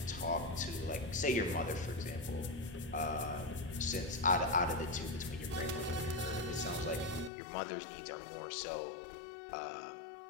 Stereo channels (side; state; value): right; drops out; at 7.3 s